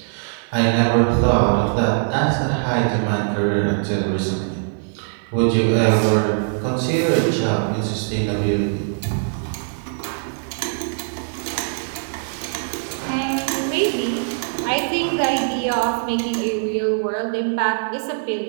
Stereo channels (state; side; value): silent; left; 65 dB below the other